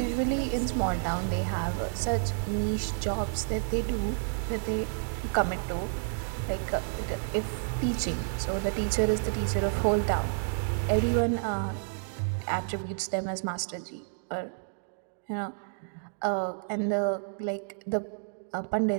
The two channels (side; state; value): left; silent; digital silence